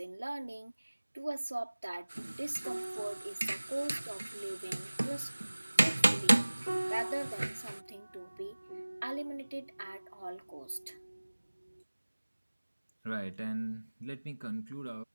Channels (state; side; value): inverted; both; correlation -1.00